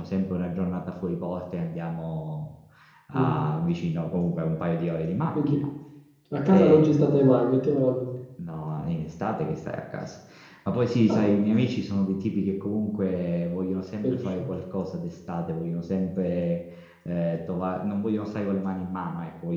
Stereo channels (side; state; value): both; identical; correlation 1.00